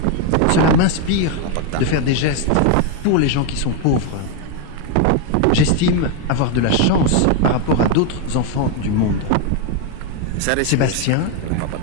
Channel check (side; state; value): both; different; correlation 0.02